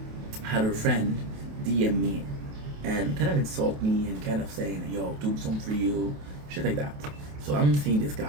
had her friend DM me and kind of insult me and kind of saying, yo, tombstone for you, shit like that. So I'm seeing this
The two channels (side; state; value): left; late; 28 ms